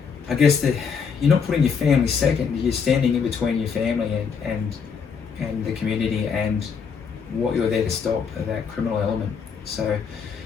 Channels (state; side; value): quieter; right; 6.2 dB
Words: I guess that you're not putting your family second. You're standing in between your family and the community and what you're there to stop, that criminal element. So